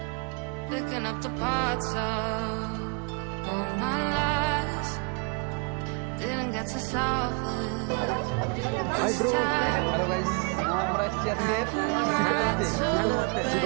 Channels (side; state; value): left; quieter; 32.7 dB